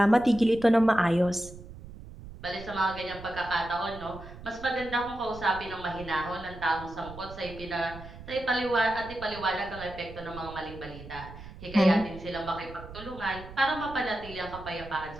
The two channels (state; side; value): noise; right; rumble, 15 dB below the sound